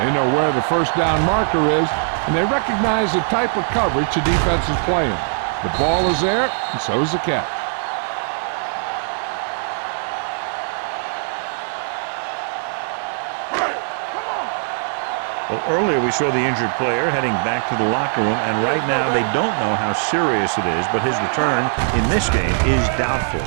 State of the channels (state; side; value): silent; left; 65 dB below the other